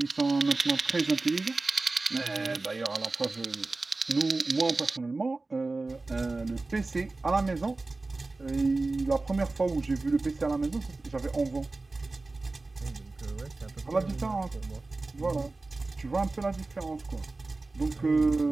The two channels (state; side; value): quieter; left; 3.4 dB